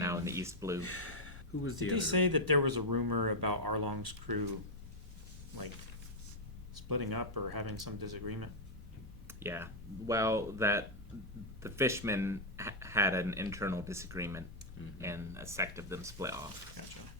in the East Blue. Who was the Did other? he say that there was a rumor about Arlong's crew, like, splitting up or having some disagreement? Yeah, well, that the fishermen had an internal disagreement, and a sect of them split off. Gotcha.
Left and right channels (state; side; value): normal; both; correlation -0.02